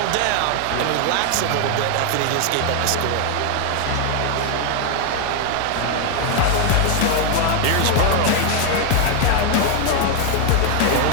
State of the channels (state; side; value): different; both; correlation 0.00